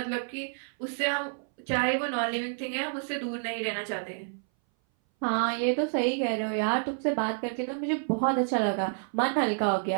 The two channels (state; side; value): silent; left; 59 dB below the other